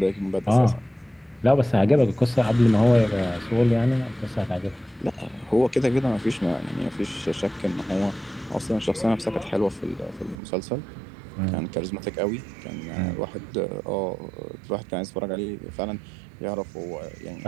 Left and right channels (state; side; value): drops out; left; at 10.4 s